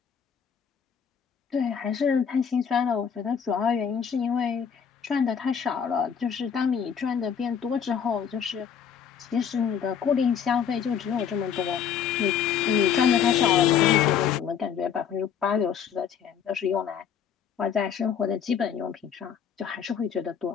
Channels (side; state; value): right; quieter; 7.8 dB